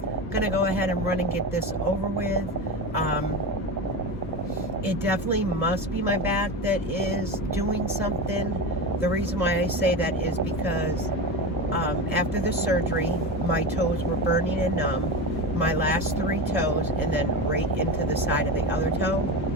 I'm gonna go ahead and run and get this over with. It definitely must be my back that is doing something. The reason why I say that is because after the surgery, my toes were burning and numb, my last 3 toes, and then right into the side of the other toe.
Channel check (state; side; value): normal; both; correlation 0.22